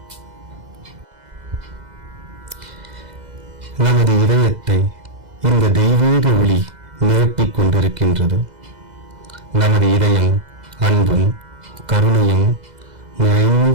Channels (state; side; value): late; left; 2.0 ms